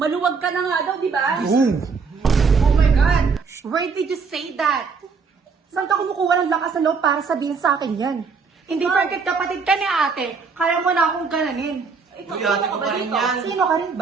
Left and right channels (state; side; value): quieter; left; 5.1 dB